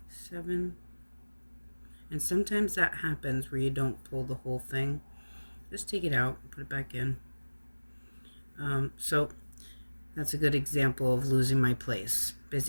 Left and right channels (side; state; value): both; inverted; correlation -1.00